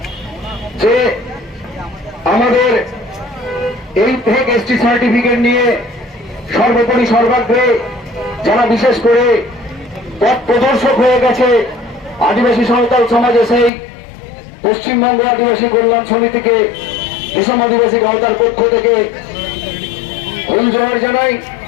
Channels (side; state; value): right; drops out; at 13.7 s